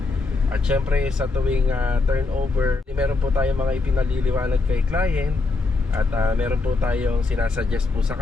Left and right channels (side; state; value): right; quieter; 3.7 dB